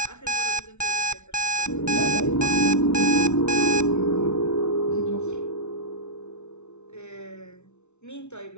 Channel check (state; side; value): late; right; 0.82 ms